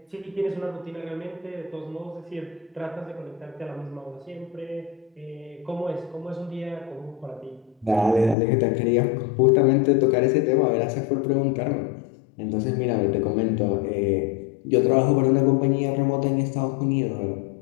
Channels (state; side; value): drops out; right; at 8.3 s